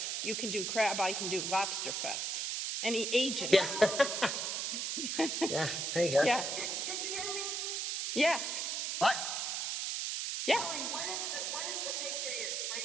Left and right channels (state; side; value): noise; right; hiss, 1 dB below the sound